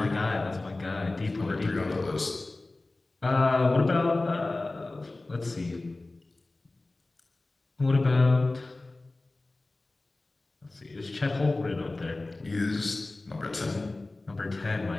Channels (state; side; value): quieter; right; 3.0 dB